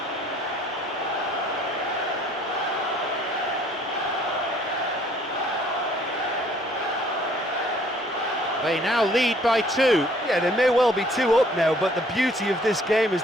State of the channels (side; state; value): both; normal; correlation 0.59